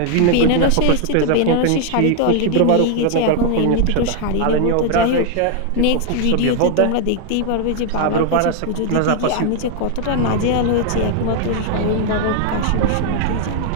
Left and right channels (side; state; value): both; different; correlation 0.00